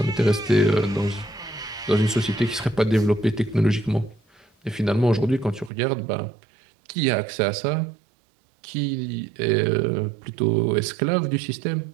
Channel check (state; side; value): drops out; left; at 5.7 s